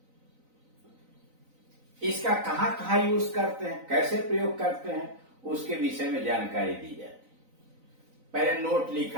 इसका कहां कहां यूज करते हैं, कैसे प्रयोग करते हैं, उसके विषय में जानकारी दी जाती है। पहले नोट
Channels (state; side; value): late; left; 3.9 ms